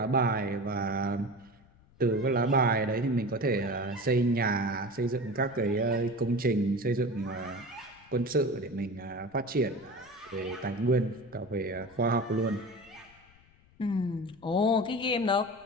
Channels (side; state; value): left; noise; rumble, 28 dB below the sound